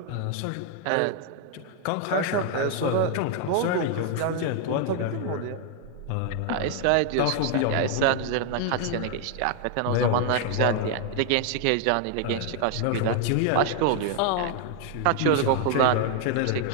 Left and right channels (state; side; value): different; both; correlation 0.00